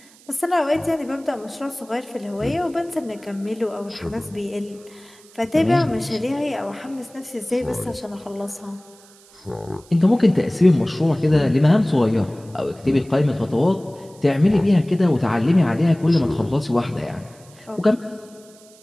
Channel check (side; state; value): right; noise; hiss, 26 dB below the sound